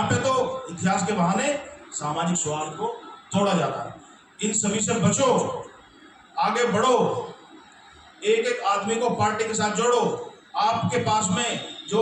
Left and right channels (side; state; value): both; identical; correlation 1.00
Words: पे तो इतिहास के बहाने सामाजिक सौहार्द को तोड़ा जाता है। इन सभी से बचो, आगे बढ़ो, एक एक आदमी को पार्टी के साथ जोड़ो। आपके पास में